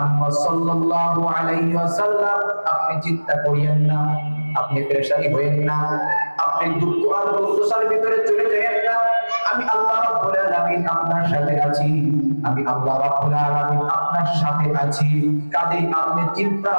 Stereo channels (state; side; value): inverted; both; correlation -1.00